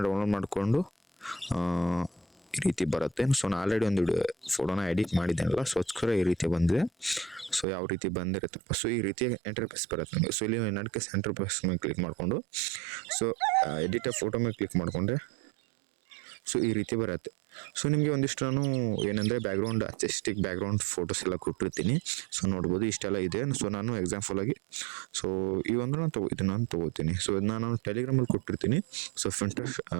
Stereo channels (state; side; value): drops out; left; at 7.7 s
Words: ಡೌನ್ಲೋಡ್ ಮಾಡಿಕೊಂಡು ಈ ರೀತಿ ಬರುತ್ತೆ. ಸೊ ನಾನು ಆಲ್ರೆಡಿ ಒಂದು ಫೋಟೋನ ಎಡಿಟ್ ಮಾಡಿದ್ದೇನಲ್ಲ, ಸೊ ಅದಕ್ಕೋಸ್ಕರ ಈ ರೀತಿ ಬಂದಿದೆ. ಸೊ ಯಾವ ರೀತಿ ಬಂದಿರುತ್ತಪ್ಪ, ಸೊ ಈ ರೀತಿ ಇಂಟರ್ಫೇಸ್ ಬರುತ್ತೆ ನಿಮಗೆ. ಸೊ ಇಲ್ಲಿ ನಡಕ್ಕೆ ಇಂಟರ್ಫೇಸ್ ಮೇಲೆ ಕ್ಲಿಕ್ ಮಾಡಿಕೊಂಡು ಸೊ ಎಡಿಟ್ ಫೋಟೋ ಮೇಲೆ ಕ್ಲಿಕ್ ಮಾಡಿಕೊಂಡ್ರೆ ಸೊ ಈ ರೀತಿ ಬರುತ್ತೆ. ಸೊ ನಿಮಗೆ ಒಂದಿಷ್ಟು ನಾನು ಏನಂದರೆ ಬ್ಯಾಕ್ಗ್ರೌಂಡ್ ಆರ್ಟಿಸ್ಟಿಕ್ ಬ್ಯಾಕ್ಗ್ರೌಂಡ್ ಫೋಟೋಸ್ ಎಲ್ಲ ಕೊಟ್ಟಿರ್ತೀನಿ. ಸೊ ನೋಡ್ಬೋದು ಇಷ್ಟೆಲ್ಲ ಇದೆ. ಸೊ ನಾನು ಎಕ್ಸಾಂಪಲ್ ಆಗಿ ಸೊ ಈ ಒಂದು ನಾನು ತೊಗೋತೀನಿ. ಸೊ ಇದನ್ನ ನಾನು ಟೆಲಿಗ್ರಾಮಲ್ಲಿ ಕೊಟ್ಟಿರ್ತೀನಿ. ಸೊ ಫಿಂಟರ್ಸ್